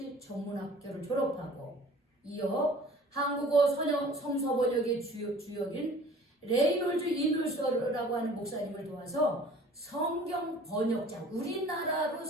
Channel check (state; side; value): normal; both; correlation 0.48